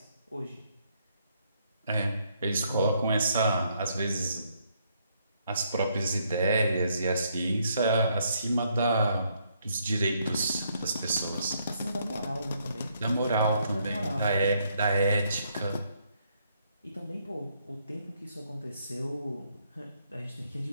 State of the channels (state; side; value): inverted; both; correlation -0.72